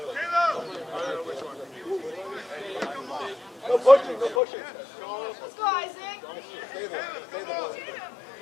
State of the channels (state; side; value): drops out; right; at 4.4 s